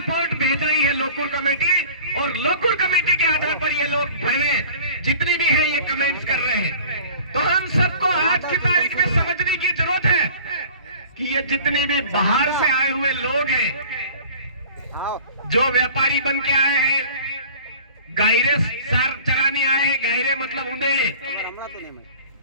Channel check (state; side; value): inverted; both; correlation -0.44